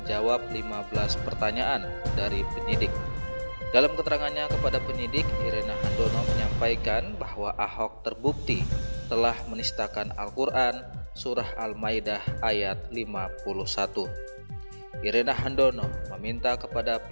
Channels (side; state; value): both; inverted; correlation -1.00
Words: 15 pertanyaan dari penyidik. Dalam keterangannya kepada penyidik, Irena Handono menyampaikan bahwa Ahok terbukti telah menistakan Al-Quran Surah Al-Maidah ayat 51. Irena Handono meminta kepada